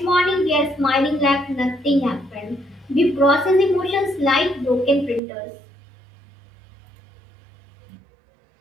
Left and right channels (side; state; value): left; drops out; at 5.2 s